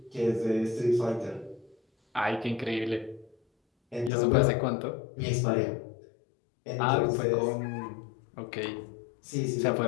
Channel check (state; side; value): drops out; right; at 4.1 s